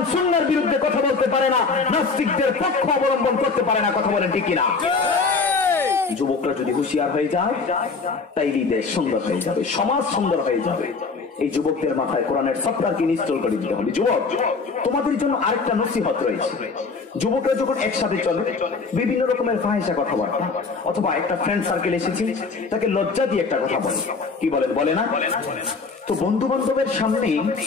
সুন্নাহর বিরুদ্ধে কথা বলতে পারে না, নাস্তিকদের পক্ষ অবলম্বন করতে পারে না। কথা বলেন ঠিক কিনা? যুবকরা যদি হুঁশিয়ার হয়ে যায়, তাইলে দেশ সুন্দর হয়ে যাবে, সমাজ সুন্দর হয়ে যাবে। এই যুবকদের মাথায় কোরআনের সফটওয়্যারকে ইনস্টল করে দিতে হবে। যুবক, তোমাদের জন্য আরেকটা নসিহত রয়েছে। যুবকরা যখন একসাথে চলে, বিভিন্ন রকমের ফাহিশা কথাবার্তা, অথবা একটা ফ্রেন্ড সার্কেল এসেছে, তাকে লজ্জা দিয়ে একটা কথা বলে, কি বলেন? বলে না? তো বন্ধু বান্ধবের সামনে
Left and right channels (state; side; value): quieter; right; 4.5 dB